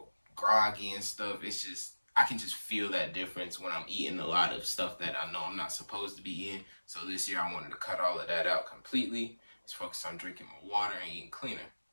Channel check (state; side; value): inverted; both; correlation -1.00